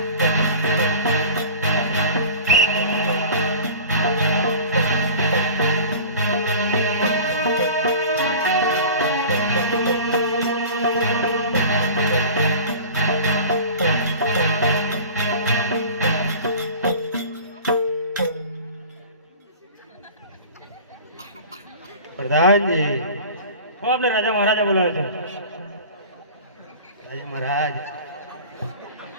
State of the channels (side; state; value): both; inverted; correlation -0.40